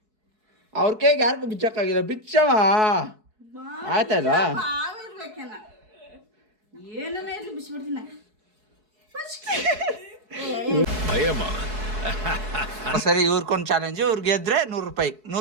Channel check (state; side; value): late; left; 4.7 ms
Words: ಅವ್ರ ಕೈಗೆ ಯಾರಿಗೂ ಬಿಚ್ಚಕ್ಕಾಗಿಲ್ಲ ಬಿಚ್ಚಮ್ಮ ಆಯ್ತಲ್ವಾ ಸರಿ ಇವ್ರಿಗೊಂದು ಚಾಲೆಂಜ್ ಇವ್ರು ಗೆದ್ರೆ